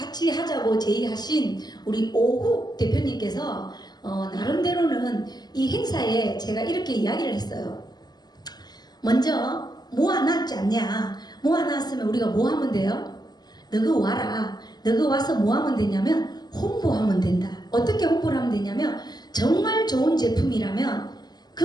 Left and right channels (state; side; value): late; right; 0.20 ms